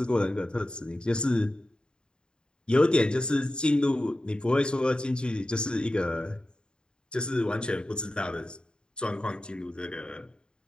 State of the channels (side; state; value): right; late; 0.050 ms